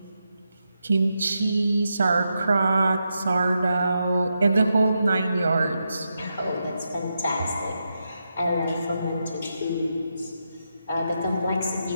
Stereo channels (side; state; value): both; inverted; correlation -0.85